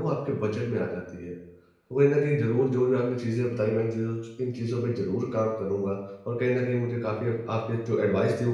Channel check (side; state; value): both; identical; correlation 1.00